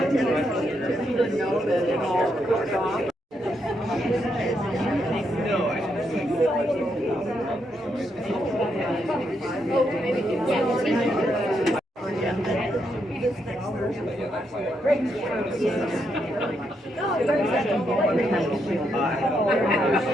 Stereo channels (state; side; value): normal; both; correlation 0.79